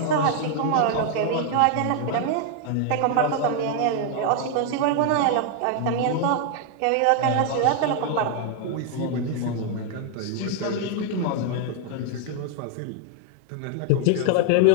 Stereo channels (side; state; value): both; different; correlation 0.00